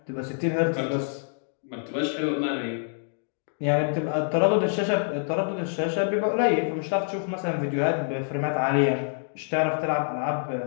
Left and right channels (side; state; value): right; silent; digital silence